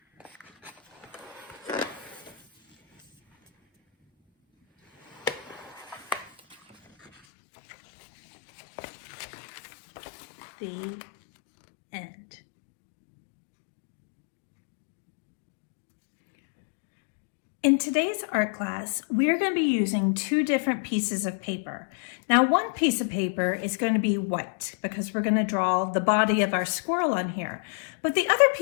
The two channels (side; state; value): right; drops out; at 7.1 s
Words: The end. In today's art class, we're going to be using two different pieces of paper. Now, one piece of paper is going to be white because we're going to draw the body of our squirrel on here. But the other